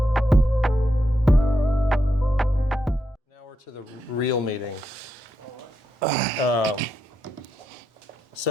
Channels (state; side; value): normal; both; correlation 0.83